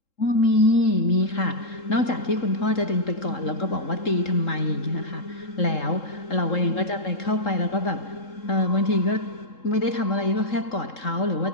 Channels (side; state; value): right; late; 3.7 ms